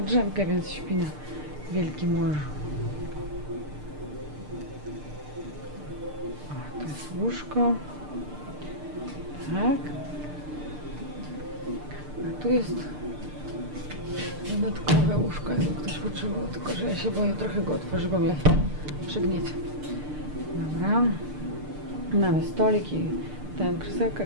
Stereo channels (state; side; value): late; left; 6.7 ms